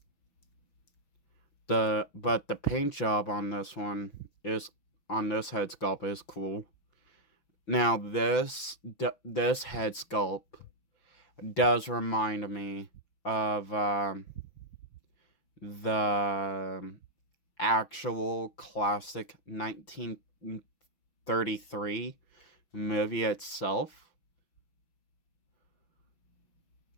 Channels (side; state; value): right; late; 5.9 ms